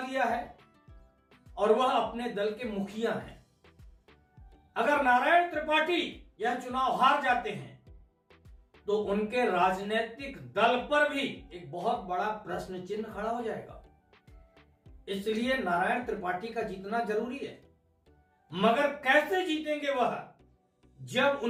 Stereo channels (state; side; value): identical; both; correlation 1.00